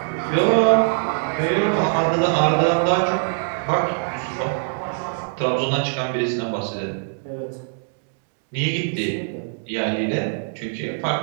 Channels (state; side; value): silent; left; 64 dB below the other